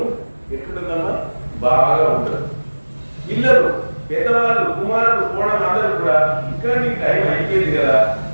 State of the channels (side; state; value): both; inverted; correlation -1.00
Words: ఎట్లుంటుందమ్మా? బాగా ఉంటుంది. పిల్లలు, పెద్దవాళ్ళు, కుమారులు, కోడలు అందరూ కూడా ఇంకా నీకు టైం అయిపోయింది కదా,